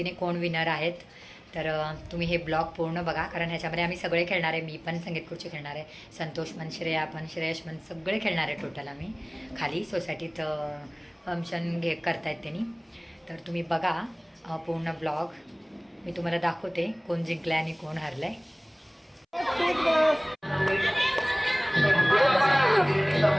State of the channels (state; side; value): identical; both; correlation 1.00